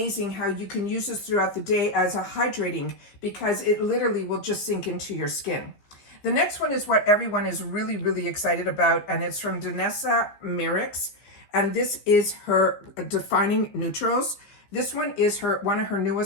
how you can use this throughout the day as a hydrating, because it literally will just sink into your skin. The next one is what everyone is really, really excited about, and it's from Danessa Myricks. And this is her Defining Neutrals. This one is one of her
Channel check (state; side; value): late; right; 15 ms